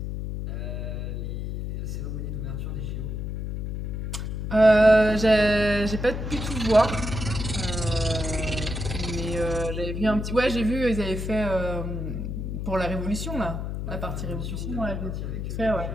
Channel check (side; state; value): left; noise; hum, 4 dB below the sound